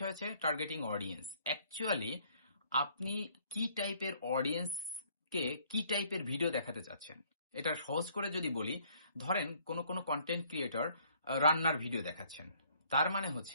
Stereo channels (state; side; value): inverted; both; correlation -0.62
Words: হচ্ছে টার্গেটিং অডিয়েন্স। অ্যাকচুয়ালি আপনি কি টাইপের অডিয়েন্সকে কি টাইপের ভিডিও দেখাতে চাচ্ছেন? এটা সহজ করে যদি বলি, ধরেন কোন কনটেন্ট ক্রিয়েটর রান্নার ভিডিও দেখাচ্ছেন। তার মানে